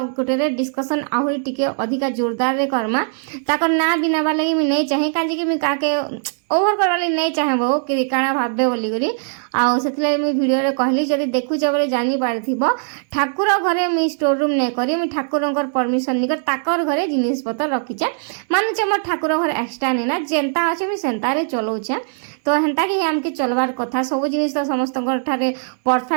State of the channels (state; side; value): silent; left; 66 dB below the other